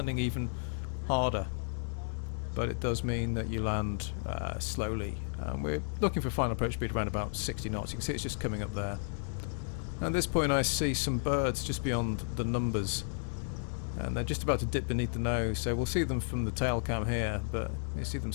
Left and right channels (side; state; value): right; silent; digital silence